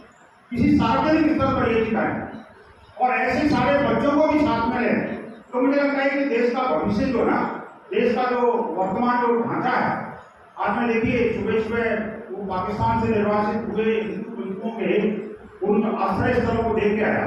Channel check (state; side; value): identical; both; correlation 1.00